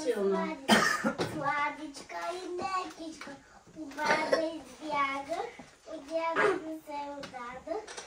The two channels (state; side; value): identical; both; correlation 1.00